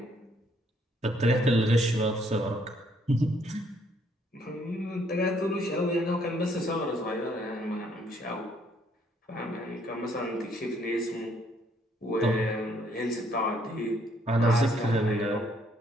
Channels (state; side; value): normal; both; correlation 0.67